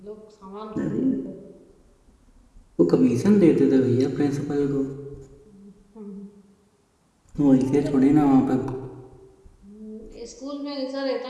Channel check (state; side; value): identical; both; correlation 1.00